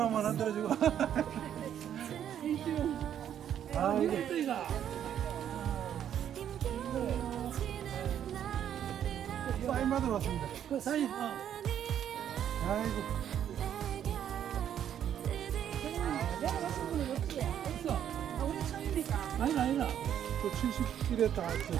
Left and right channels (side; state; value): left; quieter; 9.8 dB